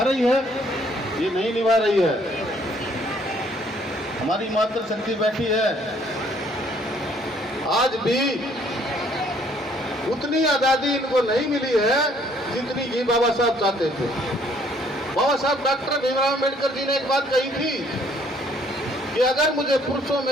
रही है? ये नहीं निभा रही है। हमारी मातृशक्ति बैठी है, आज भी उतनी आज़ादी इनको नहीं मिली है जितनी कि बाबा साहब चाहते थे। बाबा साहब डॉक्टर भीमराव अम्बेडकर जी ने एक बात कही थी कि अगर मुझे पुरुषों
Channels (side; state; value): both; normal; correlation 0.63